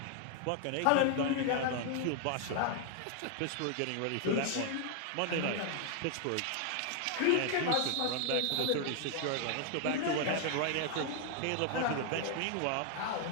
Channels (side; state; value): both; different; correlation 0.00